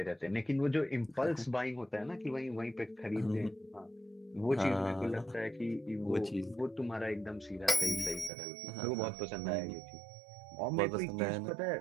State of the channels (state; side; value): drops out; left; at 8.3 s